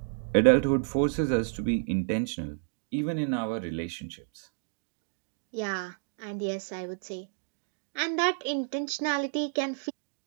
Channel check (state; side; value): silent; left; digital silence